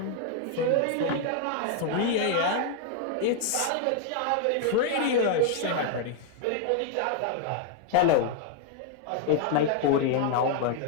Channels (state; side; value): different; both; correlation 0.00